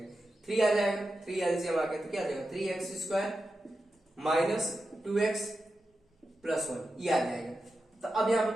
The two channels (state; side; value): normal; both; correlation 0.90